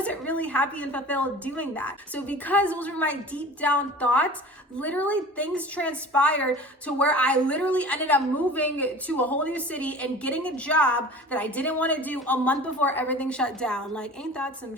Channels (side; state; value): both; normal; correlation 0.40